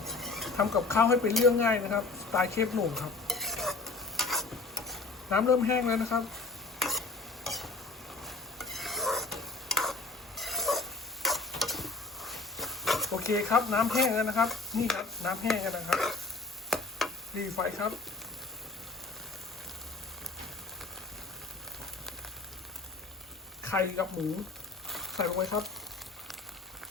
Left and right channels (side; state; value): right; quieter; 3.6 dB